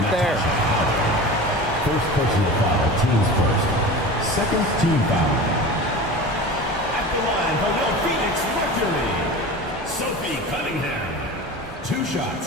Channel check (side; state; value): both; normal; correlation 0.33